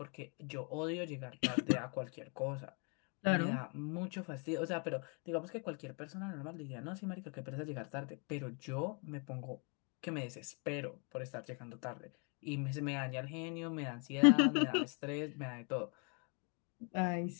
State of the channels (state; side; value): quieter; right; 38.3 dB